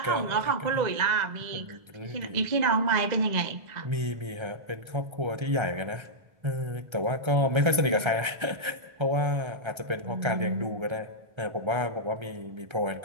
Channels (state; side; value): late; left; 1.3 ms